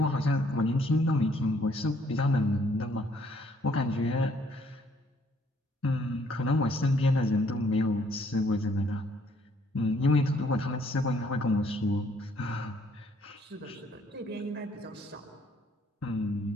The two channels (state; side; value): normal; both; correlation 0.65